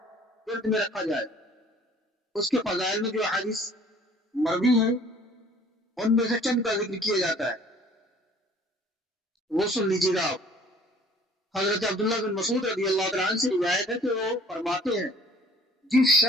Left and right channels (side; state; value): both; normal; correlation 0.54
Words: ذہن میں رکھا جائے۔ اس کے فضائل میں جو حدیث مروی ہیں ان میں سے چند کا ذکر کیا جاتا ہے، وہ سن لیجیے گا آپ۔ حضرت عبداللہ بن مسعود رضی اللہ تعالیٰ عنہ سے روایت ہے کہ وہ فرماتے ہیں، جس